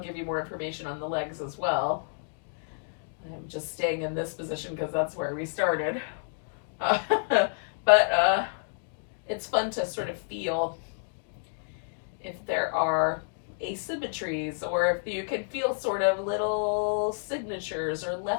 you more information on the legs as well. I'm just staying in this position because that's where we started. But it's fun to sort of feel if there are asymmetries, or if you can feel sort of little signatures or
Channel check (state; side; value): silent; right; digital silence